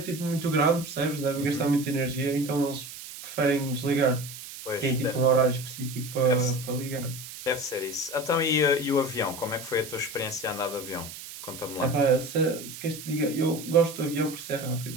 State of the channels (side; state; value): right; noise; hiss, 12 dB below the sound